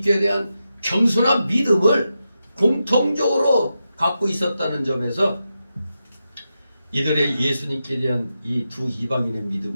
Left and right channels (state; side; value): inverted; both; correlation -0.89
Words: 대한 겸손한 믿음을 공통적으로 갖고 있었다는 점에서 이들의 예수님께 대한 이 두 이방인의